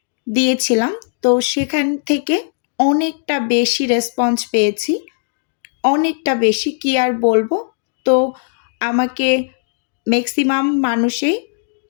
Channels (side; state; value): right; silent; digital silence